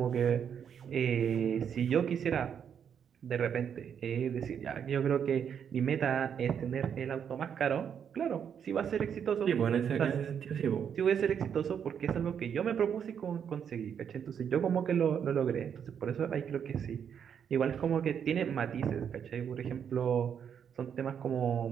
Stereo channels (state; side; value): quieter; left; 7.9 dB